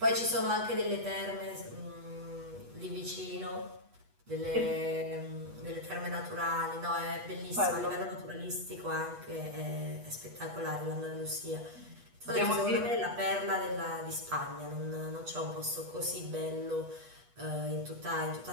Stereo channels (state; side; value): late; left; 8.2 ms